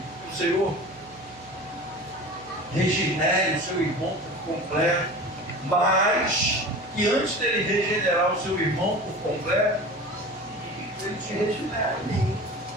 o Senhor regenere o seu irmão por completo. Mas que antes dele regenerar o seu irmão por completo, ele te regenere.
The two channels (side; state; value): left; noise; hum, 24 dB below the sound